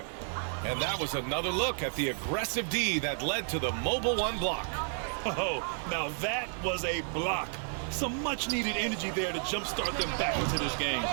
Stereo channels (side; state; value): left; silent; 57 dB below the other